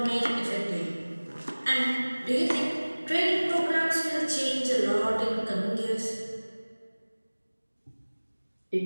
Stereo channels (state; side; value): inverted; both; correlation -1.00